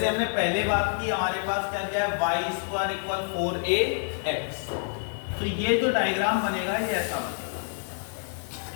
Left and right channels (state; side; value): silent; right; digital silence